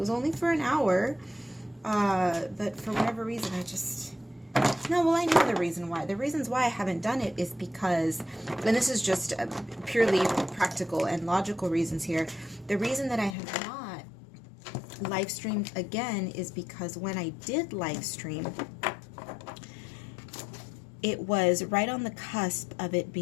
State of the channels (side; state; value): right; drops out; at 13.4 s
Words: only for an hour. But for whatever reason, I know the reason why. The reasons why I haven't done it is because, and this is just purely practical and logical reasons here. The reason that I have not live streamed again is because when I did live stream, it was right on the cusp of it